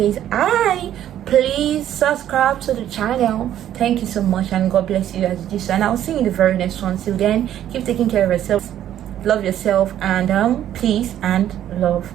please subscribe to the channel. Thank you so much, and God bless you as you do so, and I'll see you in the very next one. Till then, keep taking care of yourself, love yourself, and peace and love.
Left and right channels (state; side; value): quieter; left; 11.4 dB